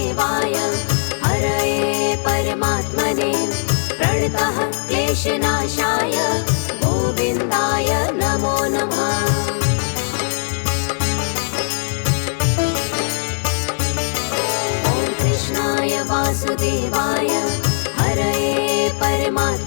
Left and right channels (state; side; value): silent; right; 61 dB below the other